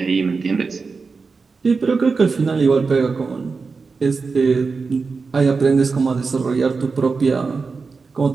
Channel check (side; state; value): left; quieter; 4.6 dB